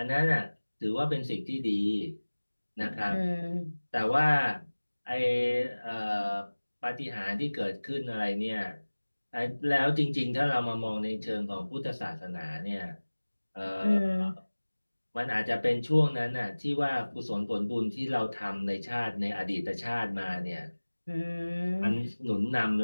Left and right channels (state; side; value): inverted; both; correlation -1.00